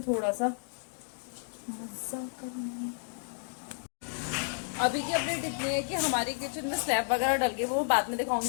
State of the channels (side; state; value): right; silent; digital silence